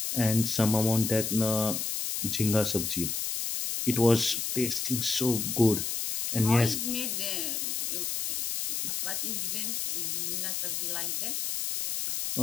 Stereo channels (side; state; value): left; noise; hiss, 1 dB below the sound